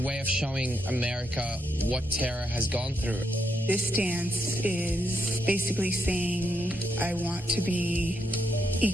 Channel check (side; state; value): both; normal; correlation 0.79